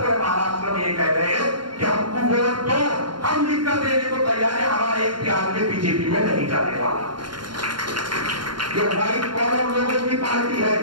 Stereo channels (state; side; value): late; left; 0.72 ms